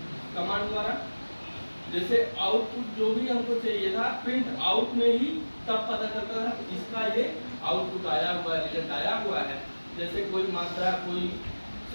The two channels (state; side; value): inverted; both; correlation -1.00